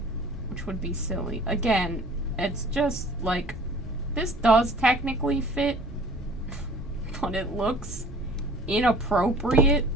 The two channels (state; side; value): normal; both; correlation 0.49